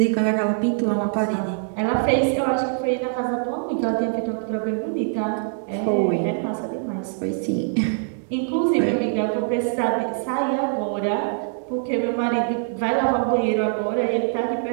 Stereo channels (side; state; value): left; silent; digital silence